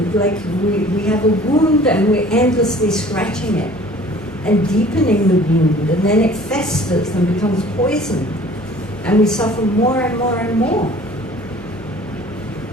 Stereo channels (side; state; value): both; normal; correlation 0.49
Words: like we have a wound and we're endlessly scratching it and deepening the wound, and then it festers and becomes poisoned, and we suffer more and more and more.